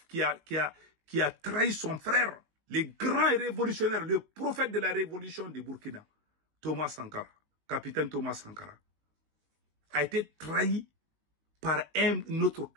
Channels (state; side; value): late; left; 19 ms